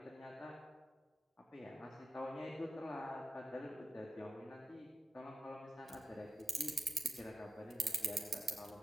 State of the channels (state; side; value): normal; both; correlation 0.91